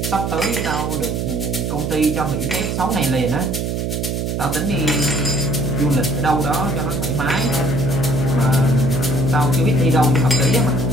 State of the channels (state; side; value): noise; right; hum, 1 dB below the sound